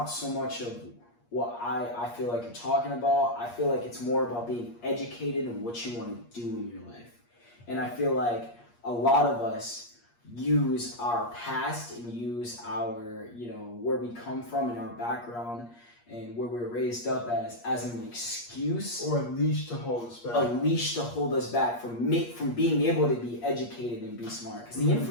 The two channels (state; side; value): late; right; 8.5 ms